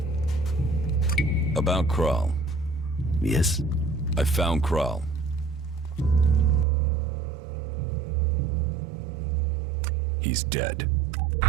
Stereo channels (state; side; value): drops out; left; at 6.7 s